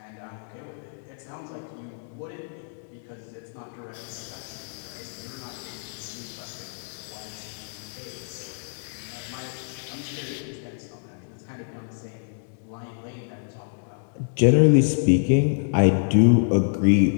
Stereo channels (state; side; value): silent; right; digital silence